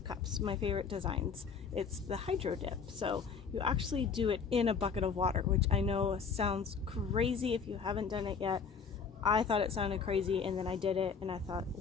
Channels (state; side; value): quieter; right; 5.9 dB